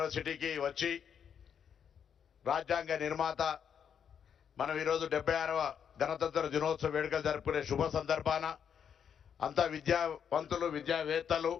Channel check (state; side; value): quieter; right; 7.9 dB